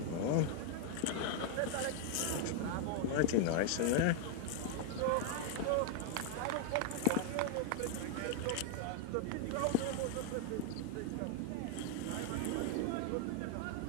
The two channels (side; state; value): both; different; correlation 0.00